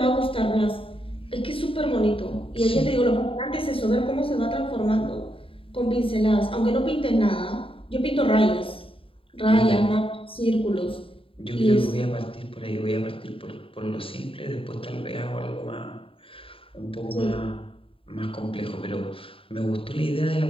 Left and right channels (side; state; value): right; late; 0.26 ms